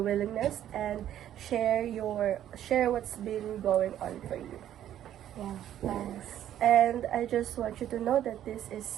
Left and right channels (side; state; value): left; quieter; 11.3 dB